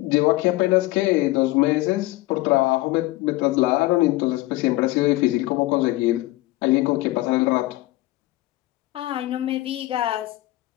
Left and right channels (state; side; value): quieter; right; 18.8 dB